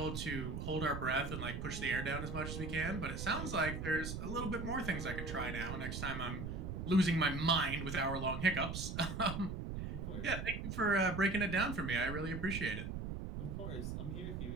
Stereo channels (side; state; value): right; noise; rumble, 5 dB below the sound